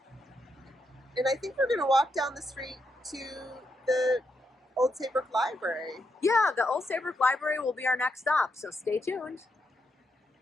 And I think we're going to walk down the street to the Old Saybrook Library. Yeah, the Old Saybrook Library will be our next stop, so stay tuned.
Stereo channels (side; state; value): both; normal; correlation 0.81